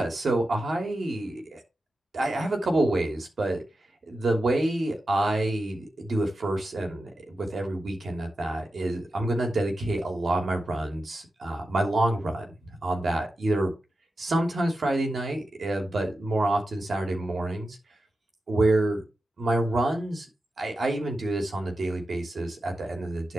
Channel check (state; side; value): normal; both; correlation 0.91